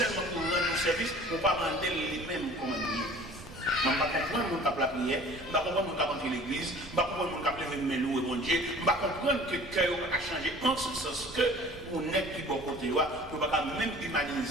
pour rendre nos services, pour ne pas demander les mêmes commandes. Je ne vais pas comprendre mon cap la prière, je ne vais pas comprendre mon cap entrer l'église, je ne vais pas comprendre mon cap lever mes loups et mon Dieu, je ne vais pas comprendre que le cœur a changé en ce sens que on est qui bon côté, on ne va pas même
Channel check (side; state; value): right; noise; rumble, 19 dB below the sound